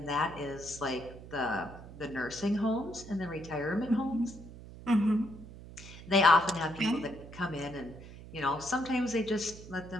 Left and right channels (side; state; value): right; noise; hum, 15 dB below the sound